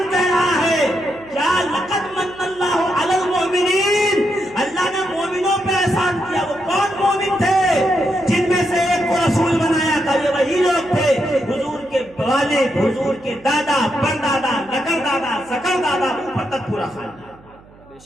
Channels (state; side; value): noise; right; hum, 25 dB below the sound